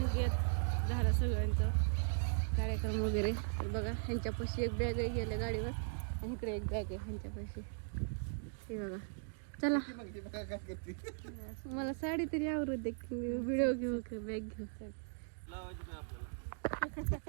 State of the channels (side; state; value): left; silent; digital silence